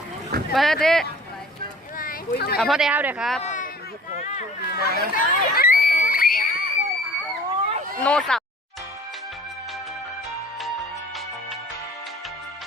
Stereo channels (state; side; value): normal; both; correlation 0.48